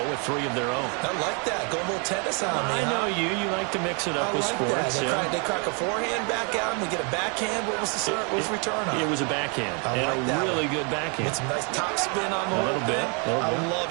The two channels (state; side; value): quieter; left; 35.3 dB